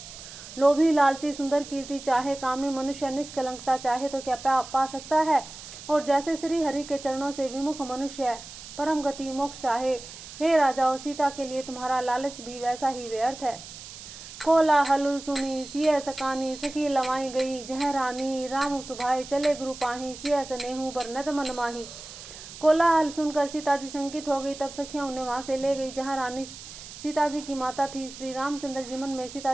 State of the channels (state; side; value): noise; right; hiss, 14 dB below the sound